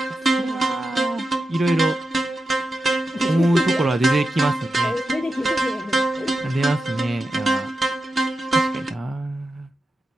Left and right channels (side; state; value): both; normal; correlation 0.90